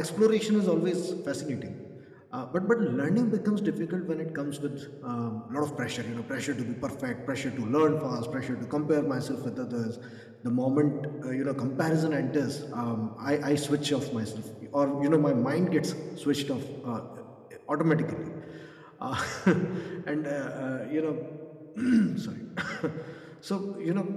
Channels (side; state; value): both; identical; correlation 1.00